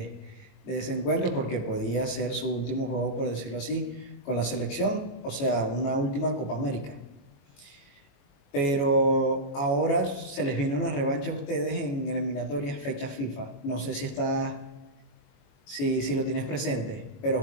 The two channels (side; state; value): right; late; 21 ms